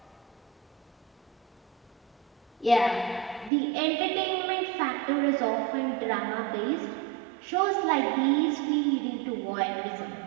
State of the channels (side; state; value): left; drops out; at 3.5 s